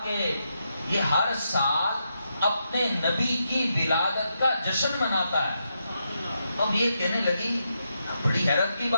کہ یہ ہر سال اپنے نبی کی ولادت کا جشن مناتا ہے۔ اب یہ کہنے لگی بڑی حیرت کی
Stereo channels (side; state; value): both; inverted; correlation -0.83